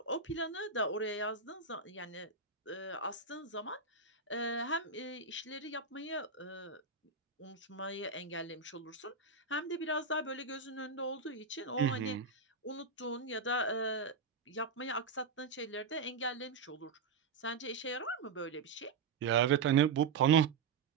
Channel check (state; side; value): quieter; left; 5.0 dB